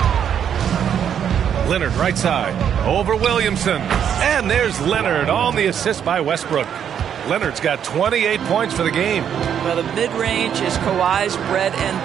Leonard right side. Over Williamson. And there's Leonard on the assist by Westbrook. Leonard's got 28 points for the game. Well, the mid-range is Kawhi's bread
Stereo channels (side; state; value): left; quieter; 8.7 dB